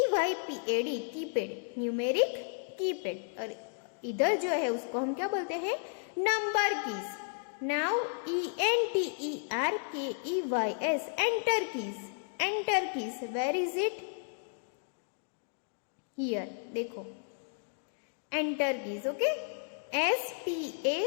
keypad, numeric keypad, और इधर जो है उसको हम क्या बोलते हैं? Number keys. Now ENTERKEYS enter keys, enter keys. Where is it? Here देखो enter keys. Okay,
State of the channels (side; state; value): right; silent; digital silence